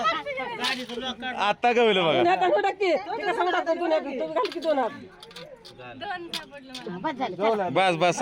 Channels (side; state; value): both; identical; correlation 1.00